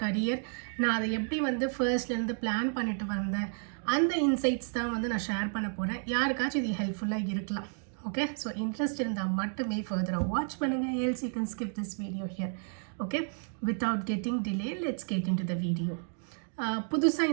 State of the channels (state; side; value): silent; left; 57 dB below the other